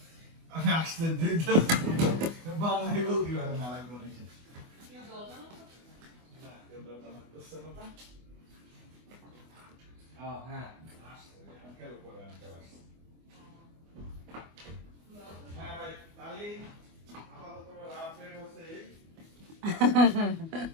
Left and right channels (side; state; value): left; late; 24 ms